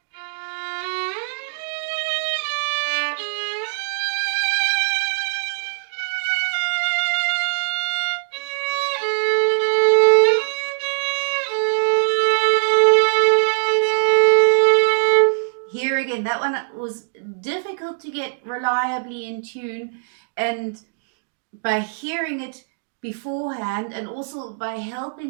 Here again, that one was difficult to get reliably in tune, and by hearing it beforehand and also by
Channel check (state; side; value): silent; left; digital silence